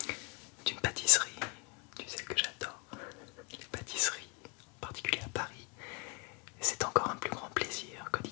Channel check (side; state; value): right; quieter; 31.0 dB